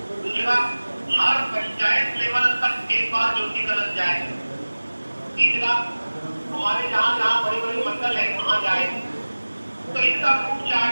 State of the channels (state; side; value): inverted; both; correlation -1.00